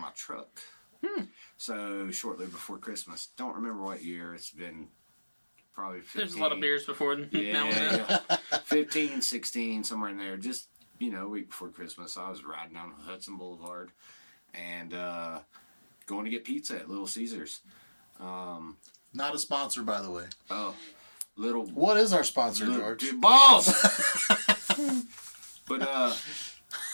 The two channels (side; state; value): both; inverted; correlation -1.00